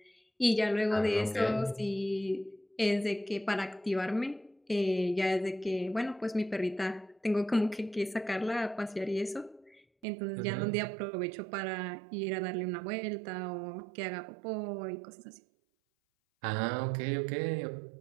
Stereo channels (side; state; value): left; drops out; at 10.1 s